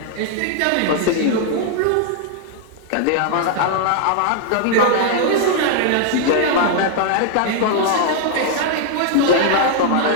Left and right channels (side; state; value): both; different; correlation -0.01